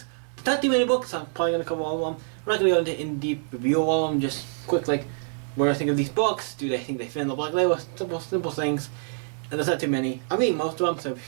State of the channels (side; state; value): left; silent; 61 dB below the other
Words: Not too many books, so I'm probably gonna cover all of them. We're not gonna go into in-deep review of all of them, just quick like what I think of these books. Do they think they fit in the Black Label? Simple things. And there's not too many. I'm reading most of them, so it's